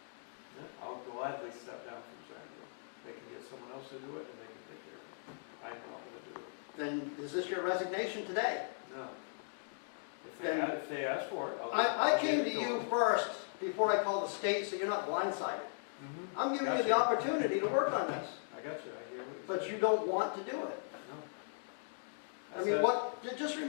I'll gladly step down from trying to do it. They can get someone else to do it and they can take care of it. I'm not gonna do it. Then is this your resignation today? No. If Then- if they ask for it, I'll. I I'll came give to it you them. first before I called the state, so you're not blindsided. Mhm. I'm giving you the Gotcha. opportunity to work on this, I got you, I gave it. but you don't want to do it. No. I mean, just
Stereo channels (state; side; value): silent; right; digital silence